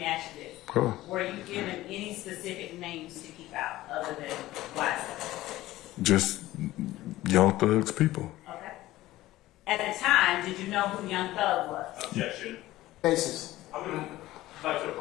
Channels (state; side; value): quieter; right; 16.4 dB